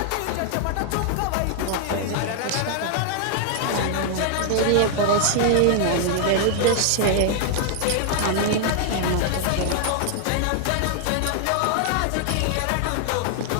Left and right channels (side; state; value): both; different; correlation 0.00